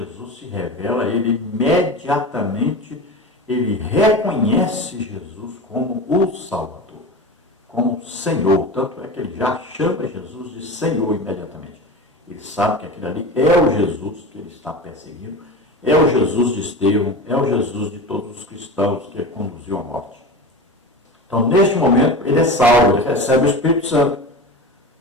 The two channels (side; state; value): both; normal; correlation 0.29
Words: se revela a ele imediatamente, ele reconhece Jesus como o Salvador, como Senhor. Tanto é que ele já chama Jesus de Senhor imediatamente. Ele sabe que aquele ali é o Jesus que ele está perseguindo, é o Jesus de Estevão, é o Jesus de todos os cristãos que ele conduziu à morte. Então, neste momento, ele é salvo, ele recebe o Espírito Santo.